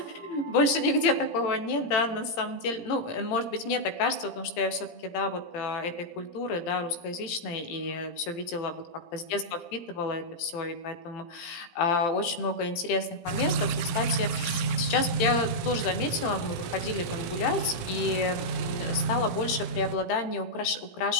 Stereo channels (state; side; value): late; right; 17 ms